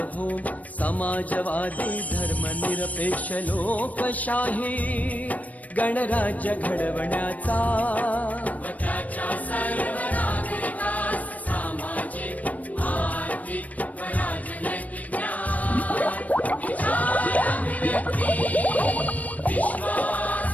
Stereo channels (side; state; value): right; late; 0.072 ms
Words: समाजवादी धर्मनिरपेक्ष लोकशाही गणराज्य घडवण्याचा